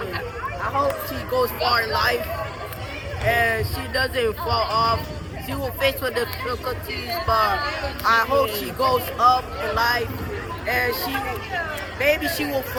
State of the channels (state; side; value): identical; both; correlation 1.00